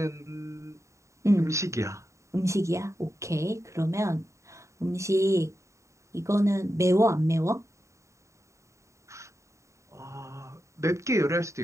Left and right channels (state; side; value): late; left; 0.14 ms